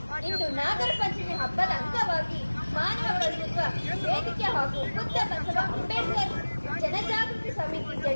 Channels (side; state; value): both; inverted; correlation -1.00